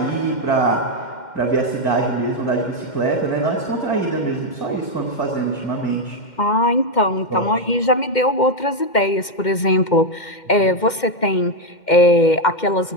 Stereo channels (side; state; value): right; late; 2.1 ms